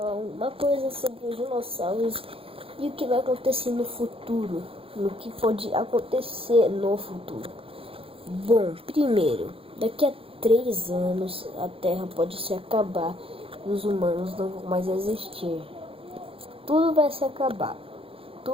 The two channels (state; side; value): late; left; 0.27 ms